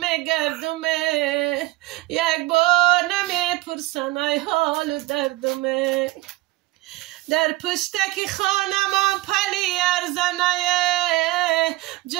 یک بار نمیپرسن ای حال و دردمه در پشتک خانم پلی ارزنه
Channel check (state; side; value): quieter; left; 19.1 dB